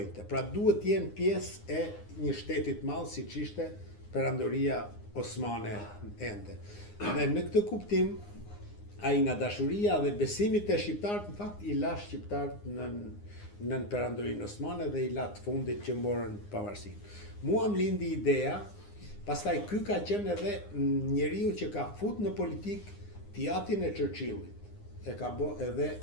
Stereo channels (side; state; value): right; late; 9.7 ms